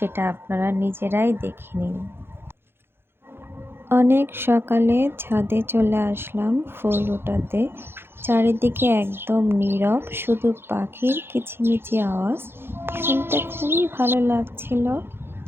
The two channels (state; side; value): late; left; 0.11 ms